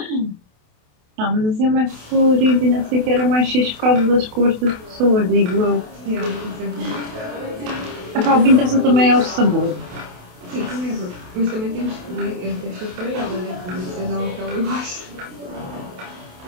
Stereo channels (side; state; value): left; late; 28 ms